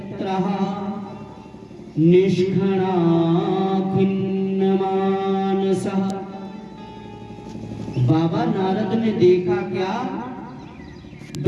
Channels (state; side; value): identical; both; correlation 1.00